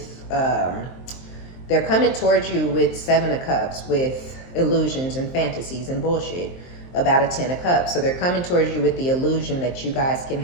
they're coming towards you with 7 of Cups, with illusions and fantasies and bullshit about a 10 of Cups. So they're coming towards you with the illusion that you guys can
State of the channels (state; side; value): late; right; 23 ms